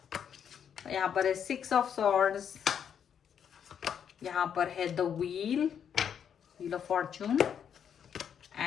यहाँ पर है 6 ऑफ सॉर्ड्स, यहाँ पर है the wheel of Fortune,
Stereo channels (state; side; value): quieter; right; 8.2 dB